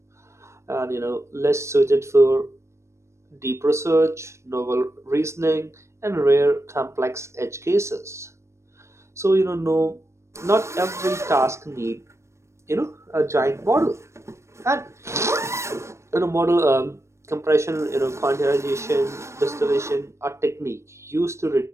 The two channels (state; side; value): late; left; 0.13 ms